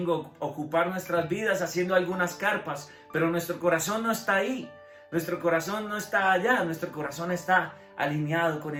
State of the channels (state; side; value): identical; both; correlation 1.00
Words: ocupar nuestras vidas haciendo algunas carpas, pero nuestro corazón no está ahí. Nuestro corazón no está allá, nuestro corazón está alineado con